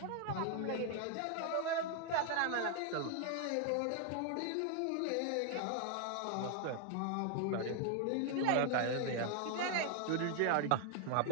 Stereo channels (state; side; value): different; both; correlation 0.00